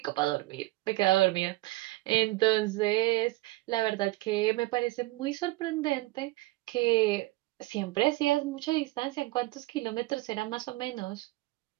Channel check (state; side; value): quieter; left; 20.2 dB